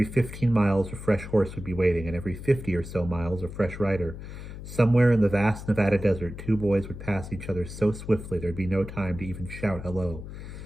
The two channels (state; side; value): noise; left; hum, 11 dB below the sound